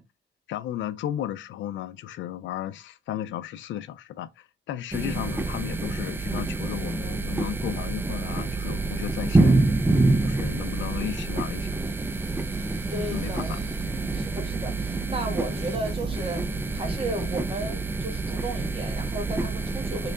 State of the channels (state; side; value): normal; both; correlation 0.74